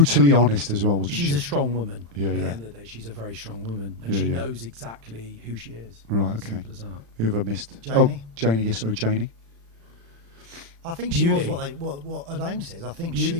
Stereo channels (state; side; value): late; left; 35 ms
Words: honest as well, wasn't she? She's a strong woman. Yeah, At the end of the day, she's a very strong woman, and she knows exactly who she is. Right, okay. Simple as that. Who have I missed? Janie. Oh, Janie. Yes, sorry, Janie. I think she was what her name says. I think